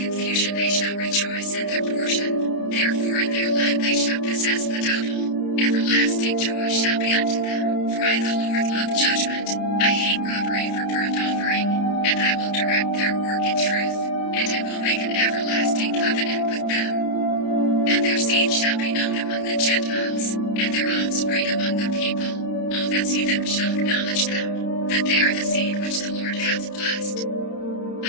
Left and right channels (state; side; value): late; right; 30 ms